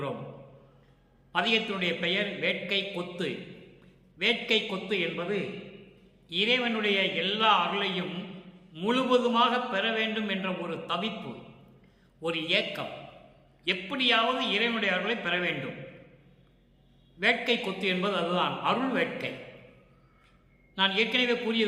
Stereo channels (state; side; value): identical; both; correlation 1.00